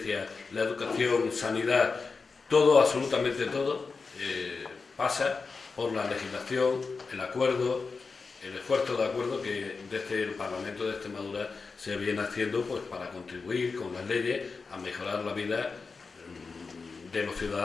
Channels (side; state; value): right; quieter; 4.5 dB